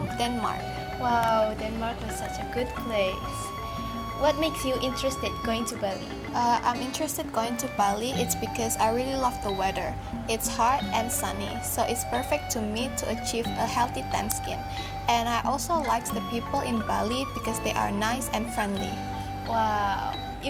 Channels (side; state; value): both; identical; correlation 1.00